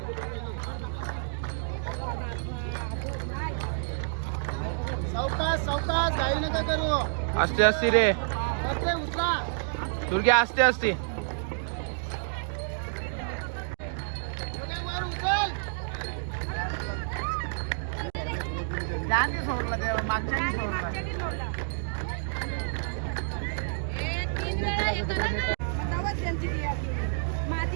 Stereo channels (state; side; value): silent; left; digital silence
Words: सावकाश घाई नका करू असते असते रे उचला तुर्की असते असते सोडला तेव्हा मागच्या सोडला